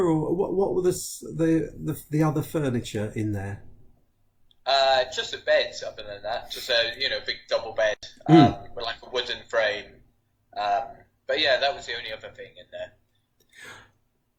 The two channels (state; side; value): identical; both; correlation 1.00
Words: what were the other furniture in there? Just a bed. Other than that, just a big double bed with like a wooden frame. But yeah, that was the only other thing in there.